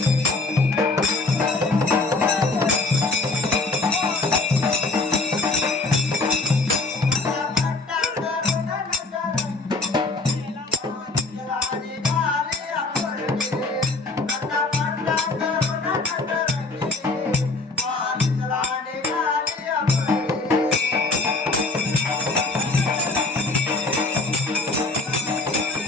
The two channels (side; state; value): right; quieter; 3.3 dB